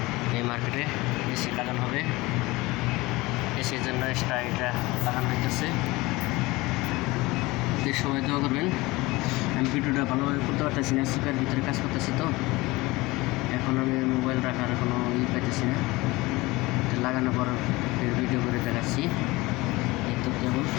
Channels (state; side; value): quieter; right; 21.4 dB